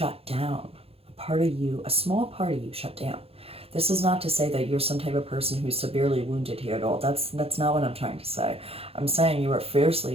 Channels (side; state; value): left; late; 0.28 ms